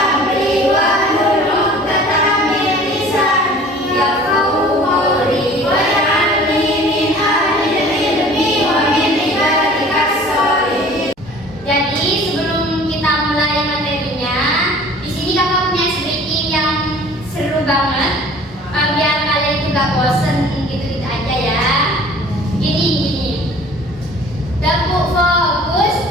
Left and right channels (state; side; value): normal; both; correlation 0.47